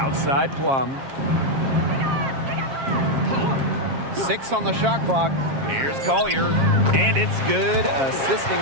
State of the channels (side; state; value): left; late; 7.4 ms